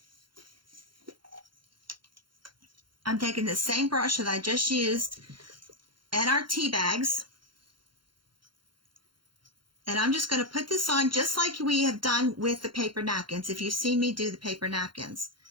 I'm taking the same brush that I just used and our tea bags. And I'm just going to put this on just like we have done with the paper napkins, if you've seen me do the paper napkins.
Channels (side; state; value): left; late; 0.72 ms